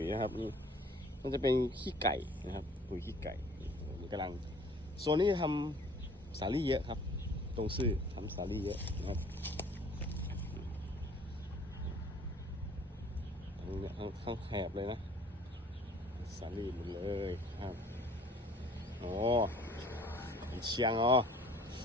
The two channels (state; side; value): normal; both; correlation 0.53